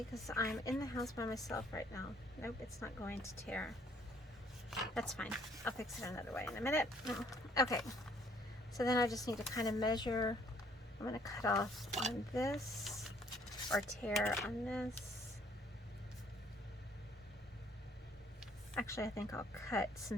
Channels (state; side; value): normal; both; correlation 0.62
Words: because I'm in the house by myself right now. Nope, it's not going to tear. That's fine. I'll fix it another way in a minute. Okay, so then I just need to kind of measure. I'm going to cut off on this or tear on this. Actually, I think I'll cut